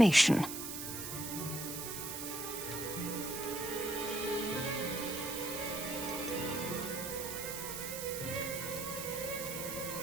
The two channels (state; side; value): noise; right; hiss, 6 dB below the sound